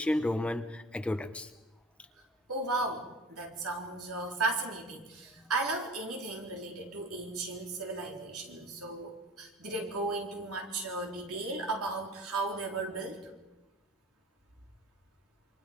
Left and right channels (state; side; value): normal; both; correlation 0.41